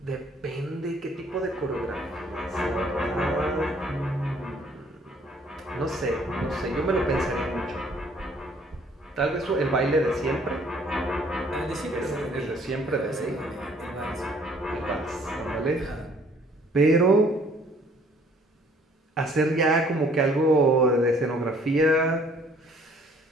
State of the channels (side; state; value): both; normal; correlation 0.60